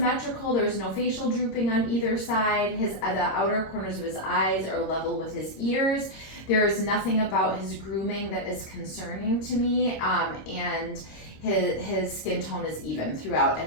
There's no facial drooping on either side. The outer corners of his eyes are level with his ears. There is nothing about his grooming that is concerning to me, and his skin tone is even throughout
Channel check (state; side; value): late; right; 26 ms